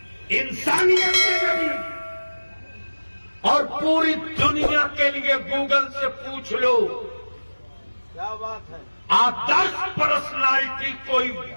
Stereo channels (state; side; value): inverted; both; correlation -1.00